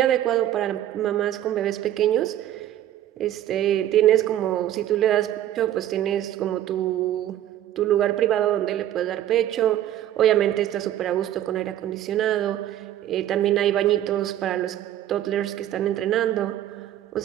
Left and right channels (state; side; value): quieter; left; 12.2 dB